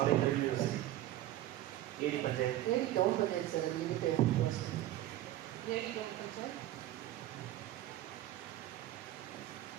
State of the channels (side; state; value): left; quieter; 14.1 dB